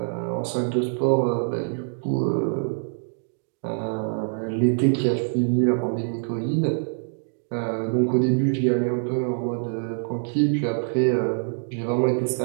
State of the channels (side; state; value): left; silent; digital silence